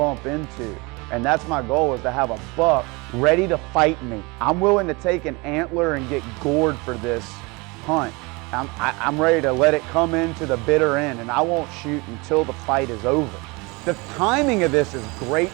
into. And that's my goal, is to have a buck ready to fight me. I'm willing to take an antler and get gored for this hunt. I'm ready to let it come into the bitter end, and I won't shoot until the fight is over. The timing of this is great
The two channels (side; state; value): left; quieter; 26.5 dB